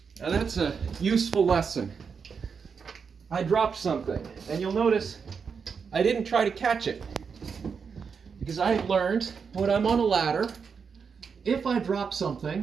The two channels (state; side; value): quieter; left; 6.0 dB